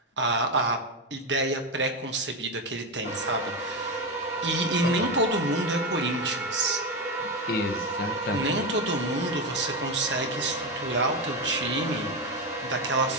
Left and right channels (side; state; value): both; normal; correlation 0.13